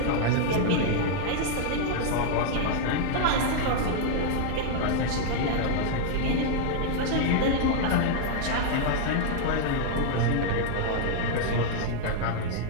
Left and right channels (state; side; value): different; both; correlation -0.01